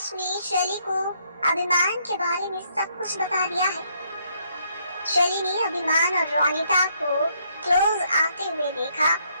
ने शैली को अभिमान के बारे में सब कुछ बता दिया है। शैली ने अभिमान और रोनिता को क्लोज आते हुए देखा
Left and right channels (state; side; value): inverted; both; correlation -0.71